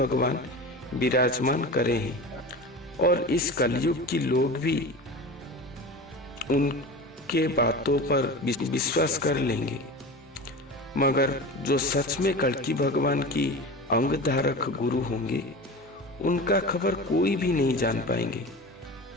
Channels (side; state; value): both; normal; correlation 0.31